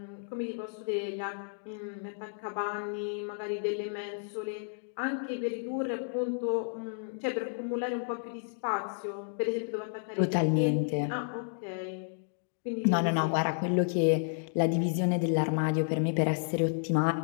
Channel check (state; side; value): silent; right; digital silence